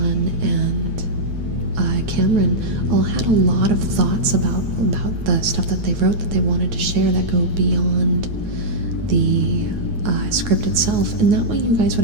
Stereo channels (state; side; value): late; left; 9.1 ms